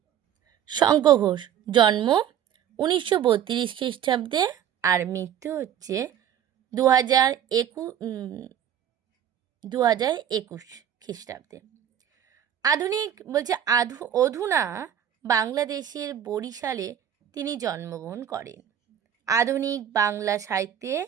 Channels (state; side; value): quieter; left; 9.9 dB